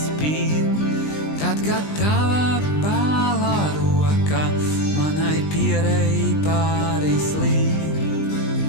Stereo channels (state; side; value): late; right; 20 ms